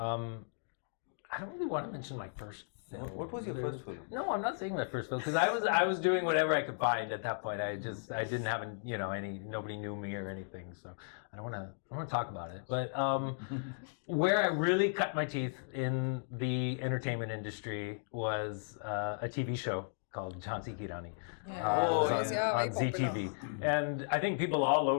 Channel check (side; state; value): right; silent; digital silence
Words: don't really want to mention my first film. What was your first film? No, I'm not saying my first film because I was doing whatever I could find at that point. I didn't have nobody knew me or anything, so I don't want to talk about it. But where I really cut my teeth in the entertainment industry was a TV show called Jhansi Ki Rani. On ZTV. And I think people all